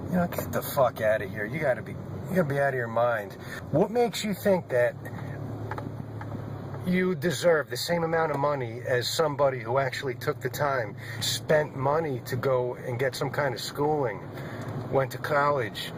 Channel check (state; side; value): identical; both; correlation 1.00